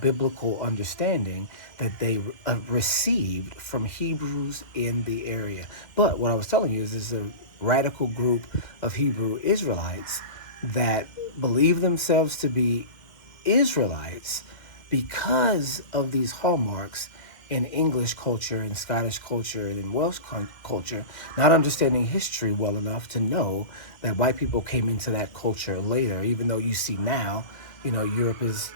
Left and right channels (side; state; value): right; late; 2.1 ms